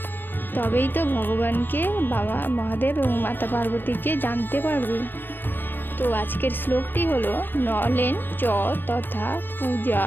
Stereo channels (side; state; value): right; late; 0.096 ms